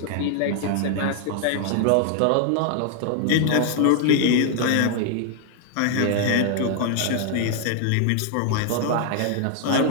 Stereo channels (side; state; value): both; different; correlation 0.00